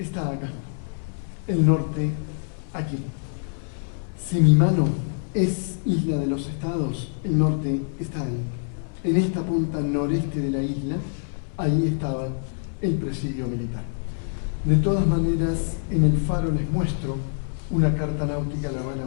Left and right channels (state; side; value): silent; right; 62 dB below the other